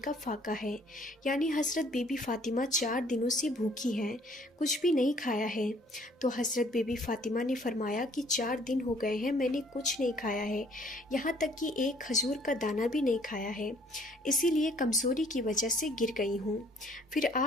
فاقہ ہے، یعنی حضرت بی بی فاطمہ 4 دنوں سے بھوکی ہیں، کچھ بھی نہیں کھایا ہے۔ تو حضرت بی بی فاطمہ نے فرمایا کہ 4 دن ہو گئے ہیں، میں نے کچھ نہیں کھایا ہے، یہاں تک کہ ایک کھجور کا دانہ بھی نہیں کھایا ہے، اسی لیے کمزوری کی وجہ سے گر گئی ہوں۔ پھر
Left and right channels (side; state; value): both; normal; correlation 0.60